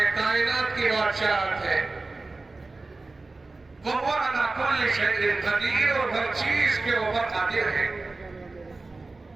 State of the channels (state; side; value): quieter; left; 3.4 dB